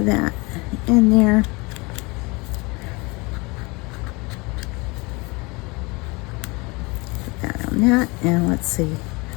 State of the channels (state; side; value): quieter; right; 26.4 dB